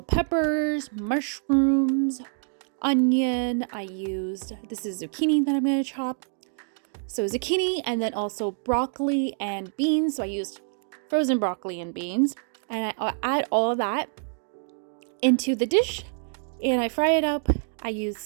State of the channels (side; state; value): left; silent; 61 dB below the other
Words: peppers, mushrooms, onion. This is zucchini that I'm going to chop. So zucchini, and then also broccoli and beans. So I used frozen broccoli and beans, and I add all of that into the dish and I fry it up. I use